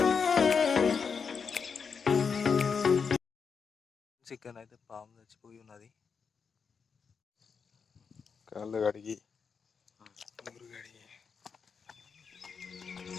చికెన్ అయితే పాము చచ్చిపోయి ఉన్నది. కాళ్ళు కడిగి నూరు కడిగి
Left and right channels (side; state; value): right; quieter; 5.9 dB